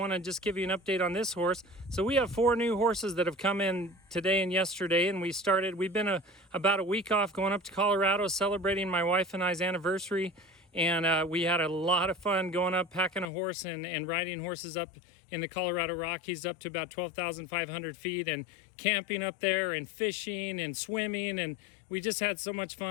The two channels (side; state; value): right; drops out; at 13.2 s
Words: to just give you an update on this horse. So we have 4 new horses that have come in today and yesterday, and we've been about a week off going up to Colorado celebrating my wife and I's anniversary. And we had a lot of fun going up, packing a horse and riding horses up in the Colorado Rockies up to about 12,500 feet and camping up there and fishing and swimming. And we just had so much